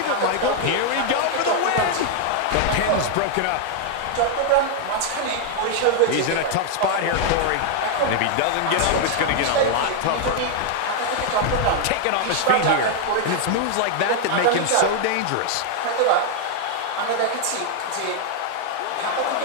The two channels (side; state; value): both; different; correlation 0.00